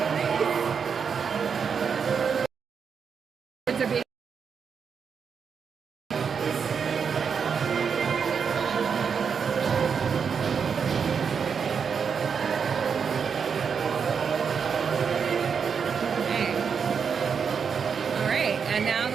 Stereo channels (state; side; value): quieter; left; 6.4 dB